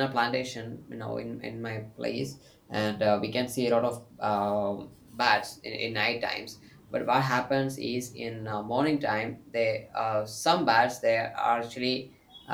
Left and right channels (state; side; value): identical; both; correlation 1.00